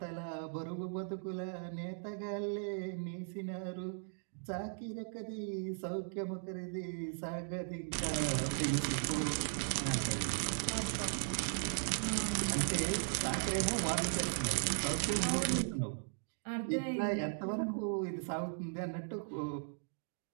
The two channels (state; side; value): silent; left; digital silence